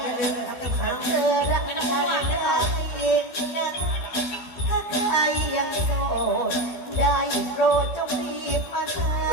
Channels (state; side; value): late; right; 12 ms